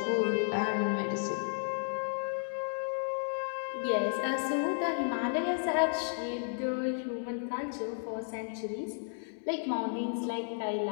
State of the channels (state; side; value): silent; right; 56 dB below the other